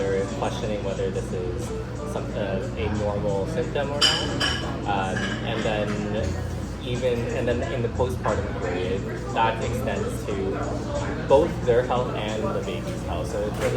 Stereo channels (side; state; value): both; identical; correlation 1.00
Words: questioning whether this is a normal symptom or not, and then in the postpartum period, that extends to both their health and the baby's health. So in terms